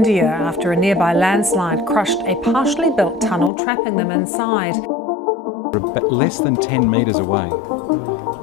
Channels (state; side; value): drops out; right; at 3.5 s